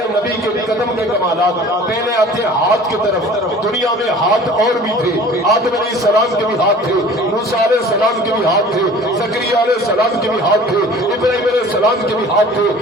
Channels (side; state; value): both; normal; correlation 0.46